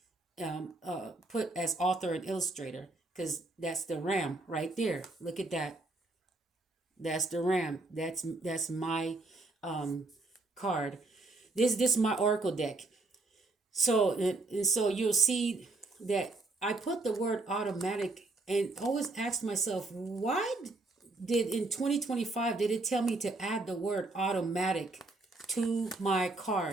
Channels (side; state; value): left; quieter; 3.1 dB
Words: put as author and illustrator, because that's the ram right there. Look at that. That's the ram. That's my um, card. This is my oracle deck. So and so you'll see that I put the word automatic and always asked myself, why did in 2025 did it tell me to add the word automatic to my